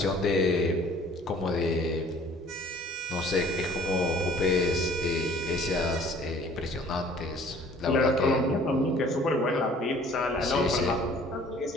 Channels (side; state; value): both; normal; correlation 0.53